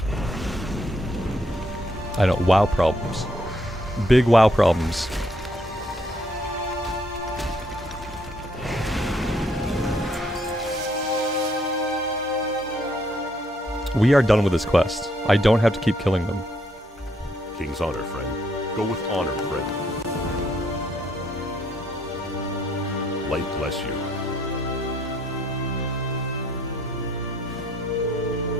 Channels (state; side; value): normal; both; correlation 0.71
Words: I know, WoW problems. Big WoW problems. We are done with this quest. I don't have to keep killing them. King's honor, friend. Go with honor, friend. Light bless you.